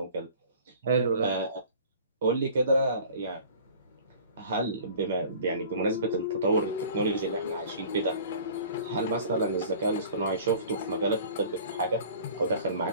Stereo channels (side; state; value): both; inverted; correlation -0.45